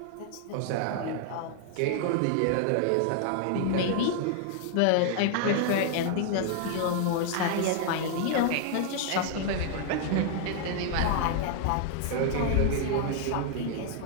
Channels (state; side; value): different; both; correlation 0.00